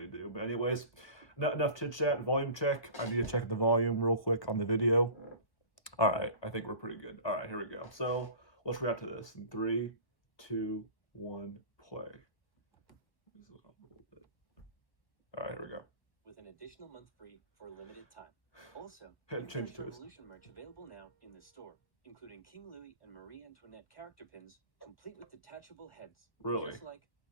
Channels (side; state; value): right; late; 1.2 ms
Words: do. But anyways, enough chit chat. Volume check. I need to check the volume real quick on the video. All right, I think we're pretty good. All right, here we go. So let's react to this in 3, 2, 1, play. All right, here we go. With an additional month free for a limited time. Also, change to Revolution merch available now in the store, including King Louis and Marie Antoinette character pins, complete with detachable heads. Really? Just like